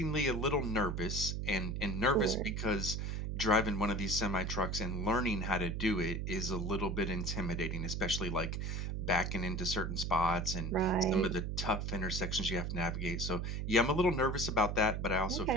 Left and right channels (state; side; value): noise; right; hum, 2 dB below the sound